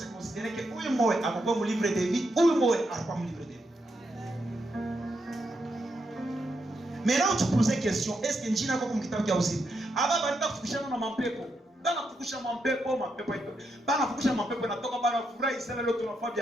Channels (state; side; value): normal; both; correlation 0.82